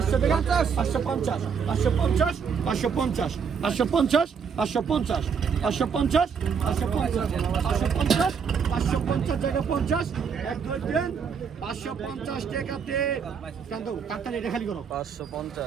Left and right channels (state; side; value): quieter; left; 6.5 dB